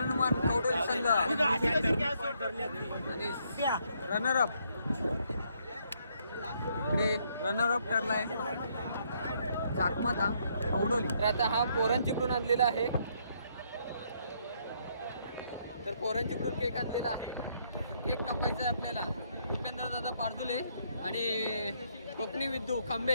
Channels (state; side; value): inverted; both; correlation -0.71